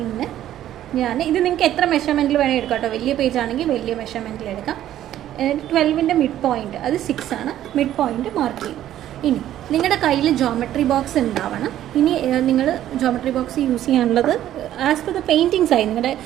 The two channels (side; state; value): left; quieter; 12.2 dB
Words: ഞാൻ ഇത് നിങ്ങൾക്ക് എത്ര മെഷർമെൻറ്റിൽ വേണമെങ്കിൽ എടുക്കാം കേട്ടോ. വലിയ പേജ് ആണെങ്കിൽ വലിയ മെഷർമെൻറ്റിൽ എടുക്കാം. 12ൻ്റെ മിഡ് പോയിൻറ്റ് അത് 6 ആണ്. മിഡ് പോയിൻറ്റ് മാർക്ക് ചെയ്യും. ഇനി നിങ്ങളുടെ കയ്യിൽ ജോമെട്രി ബോക്സ് ഉണ്ടാവണം. ഇനി നിങ്ങൾ ജോമെട്രി ബോക്സ് യൂസ് ചെയ്യാനുള്ളത് as per the painting size നിങ്ങളുടെ